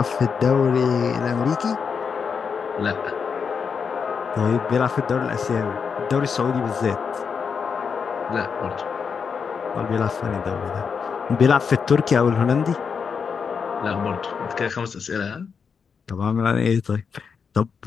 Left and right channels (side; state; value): right; quieter; 6.1 dB